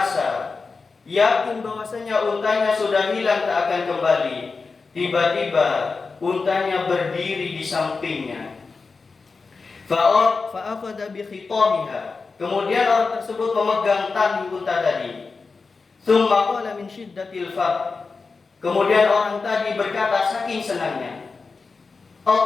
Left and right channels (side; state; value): right; quieter; 4.4 dB